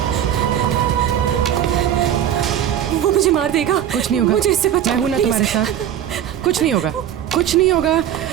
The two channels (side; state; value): left; quieter; 10.4 dB